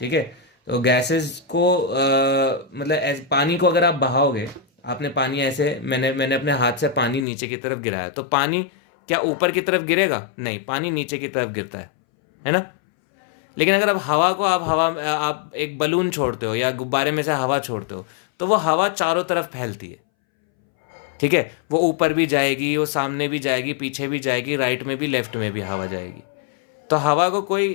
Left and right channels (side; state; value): right; drops out; at 7.2 s